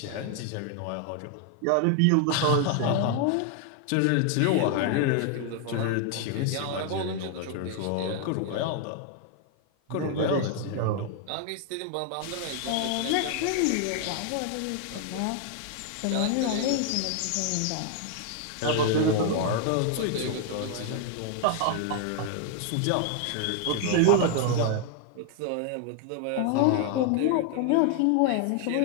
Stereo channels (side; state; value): both; different; correlation 0.00